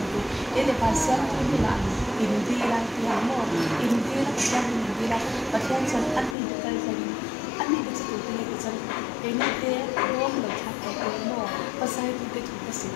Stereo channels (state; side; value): drops out; right; at 6.4 s